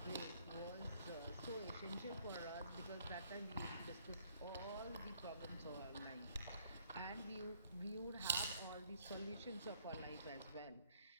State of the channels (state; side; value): inverted; both; correlation -0.65